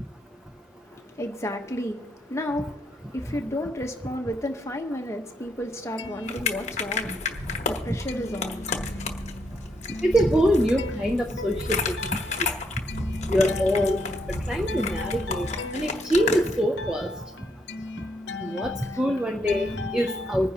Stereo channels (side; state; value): both; normal; correlation 0.76